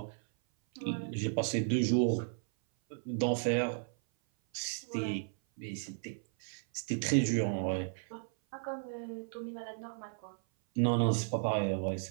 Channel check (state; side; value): silent; left; 55 dB below the other